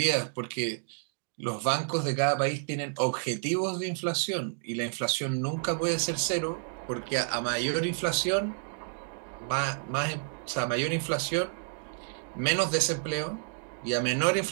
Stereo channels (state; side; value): silent; left; digital silence